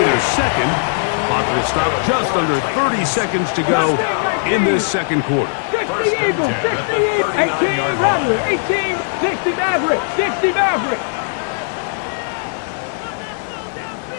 their second. Clock will stop just under 30 seconds to go in this second quarter. 60 Eagles. 60 Eagles. 18 Rattler. 18. 60 Maverick. 60 Maverick.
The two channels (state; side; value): silent; right; digital silence